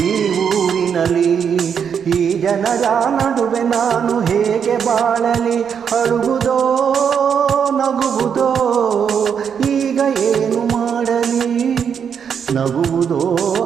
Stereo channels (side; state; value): left; quieter; 7.4 dB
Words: ಈ ಊರಿನಲ್ಲಿ. ಈ ಜನರ ನಡುವೆ ನಾನು ಹೇಗೆ ಬಾಳಲಿ? ಅಳುವುದೋ ನಗುವುದೋ ಈಗ ಏನು ಮಾಡಲಿ? ನಗುವುದೋ